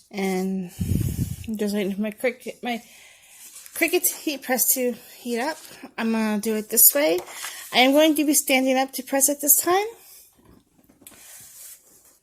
And I'm just waiting for my Cricut heat press to heat up. I'm going to do it this way. I am going to be standing up to press it this time.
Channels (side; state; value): both; identical; correlation 1.00